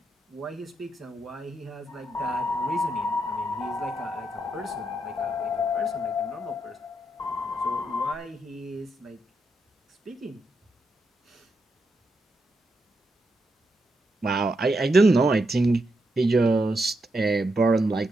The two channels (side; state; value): both; normal; correlation 0.82